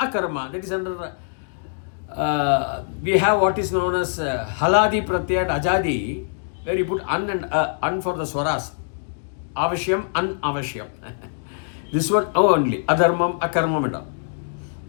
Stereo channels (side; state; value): right; silent; digital silence